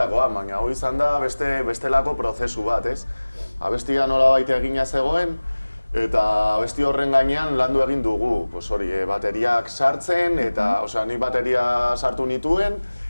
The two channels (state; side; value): inverted; both; correlation -1.00